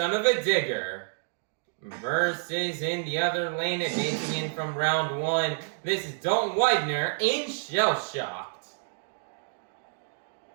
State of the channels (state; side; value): silent; left; digital silence